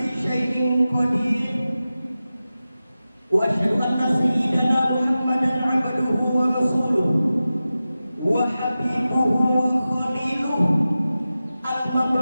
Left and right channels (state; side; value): inverted; both; correlation -0.94